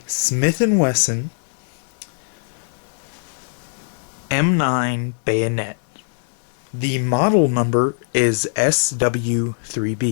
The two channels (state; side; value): silent; right; digital silence